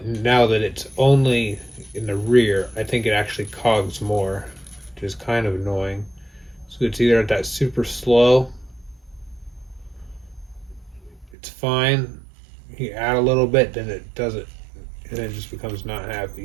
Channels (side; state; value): left; drops out; at 11.4 s